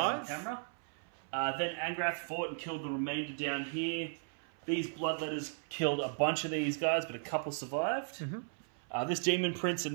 On camera. Then Ang'rath fought and killed the remainder down here. These Bloodletters killed a bunch of these guys, but a couple survived. Mm-hmm. This Demon Prince and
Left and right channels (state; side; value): silent; left; 54 dB below the other